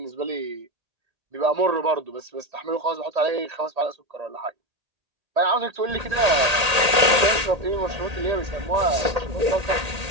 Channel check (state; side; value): late; left; 1.8 ms